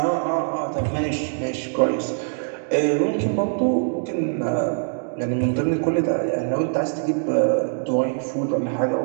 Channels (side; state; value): left; silent; digital silence